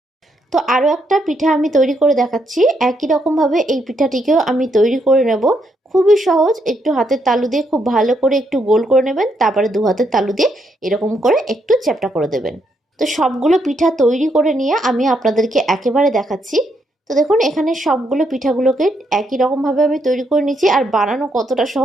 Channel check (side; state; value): both; normal; correlation 0.76